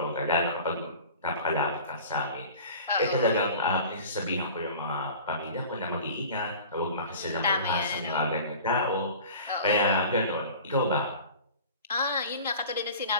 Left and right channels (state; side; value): inverted; both; correlation -0.41